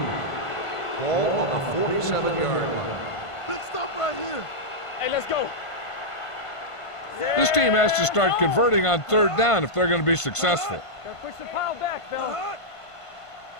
2. Ball on the 47-yard line. Big stop right here. Hey, let's go. This team has to start converting on 3rd down if they're going to be successful. Gotta push the pile back, fella.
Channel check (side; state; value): right; late; 1.5 ms